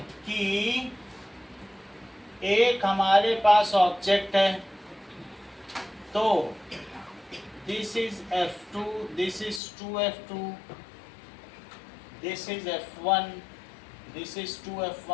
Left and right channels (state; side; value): drops out; right; at 9.6 s